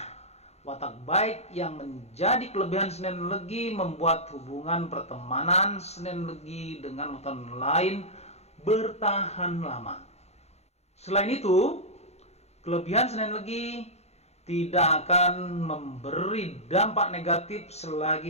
Watak baik yang menjadi kelebihan Senin Legi membuat hubungan pertemanan Senin Legi dengan weton lain bertahan lama. Selain itu, kelebihan Senin Legi tidak akan memberi dampak negatif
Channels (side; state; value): right; late; 0.31 ms